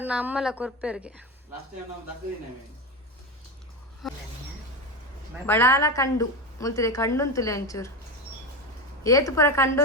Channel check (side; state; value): both; normal; correlation 0.18